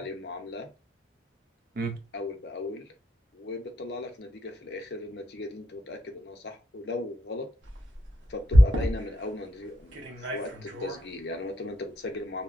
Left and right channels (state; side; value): normal; both; correlation 0.80